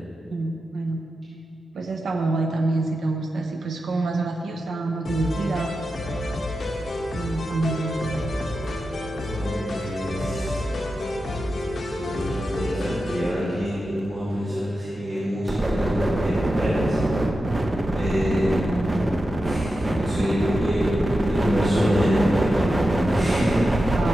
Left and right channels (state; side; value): normal; both; correlation 0.91